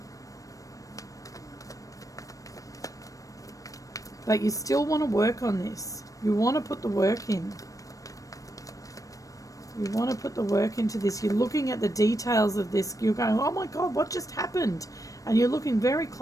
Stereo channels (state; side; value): late; right; 0.16 ms